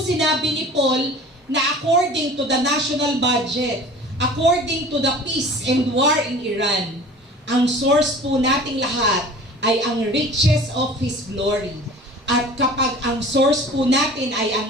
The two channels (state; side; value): normal; both; correlation 0.42